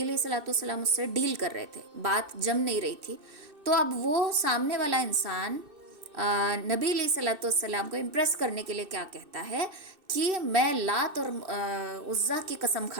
علیہ الصلوۃ والسلام اس سے ڈیل کر رہے تھے، بات جم نہیں رہی تھی، تو اب وہ سامنے والا انسان نبی علیہ الصلوۃ والسلام کو امپریس کرنے کے لیے کیا کہتا ہے کہ میں لات اور عزیٰ کی قسم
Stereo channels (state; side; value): late; left; 2.6 ms